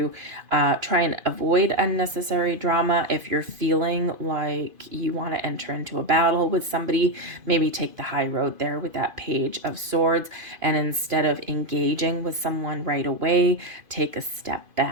try and avoid unnecessary drama. If you're feeling like you want to enter into a battle with somebody, maybe take the high road there with that Page of Swords, and instead of engaging with someone right away, take a step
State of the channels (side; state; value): left; late; 2.5 ms